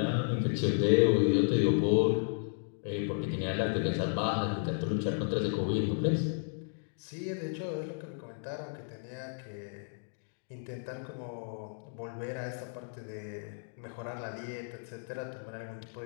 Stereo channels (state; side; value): silent; right; digital silence